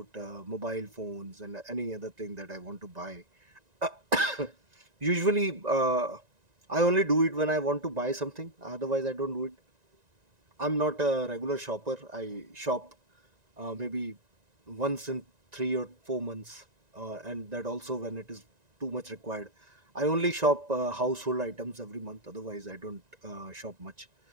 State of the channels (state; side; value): late; left; 1.9 ms